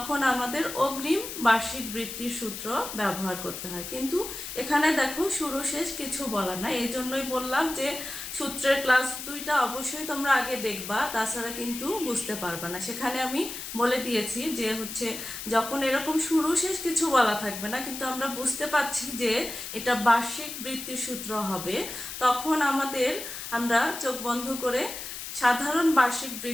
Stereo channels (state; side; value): noise; left; hiss, 8 dB below the sound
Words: আমাদের অগ্রিম বার্ষিক বৃত্তির সূত্র ব্যবহার করতে হয়। কিন্তু এখানে দেখো শুরু শেষ কিছু বলা নাই, এই জন্যই বললাম যে সূত্রের ক্লাস দুইটা অবশ্যই তোমরা আগে দেখবা, তাছাড়া কিন্তু বুঝতে পারবা না। সেখানে আমি বলে দিয়েছি যে হচ্ছে যখন এরকম শুরু শেষ কিছু বলা থাকবে না কিন্তু আমরা বুঝতে পারছি যে এটা বার্ষিক বৃত্তির সূত্র হবে, তখন আমরা চোখ বন্ধ করে সাধারণ বার্ষিক